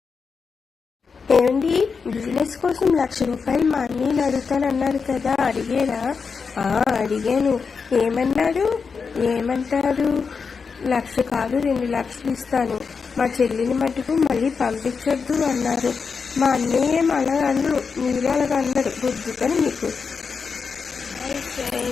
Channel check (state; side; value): quieter; right; 5.4 dB